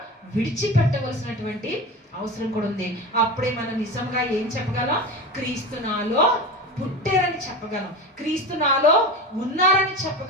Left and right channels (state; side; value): normal; both; correlation 0.27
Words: విడిచిపెట్టవలసినటువంటి అవసరం కూడా ఉంది. అప్పుడే మనం నిజంగా ఏం చెప్పగలం? క్రీస్తు నాలో పుట్టారని చెప్పగలం, క్రీస్తు నాలో ఉన్నారని